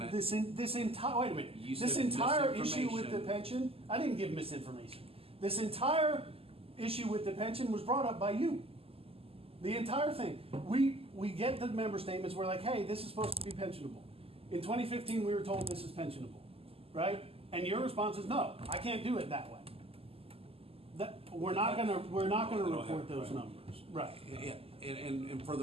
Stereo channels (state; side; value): late; left; 0.28 ms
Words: this entire, wait a minute. You This said entire issue with the misinformation. pension, I didn't give misinformation. This entire issue with the pension was brought up by you. The entire thing. We get the member statements, we're like, hey, this is supposed to be pensionable. In 2015, we were told this is pensionable, right? And your response is, no, I can't do it that way. We're not gonna report those numbers, right? Yeah, and for